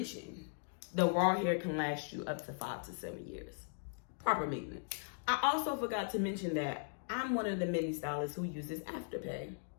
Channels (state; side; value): silent; right; digital silence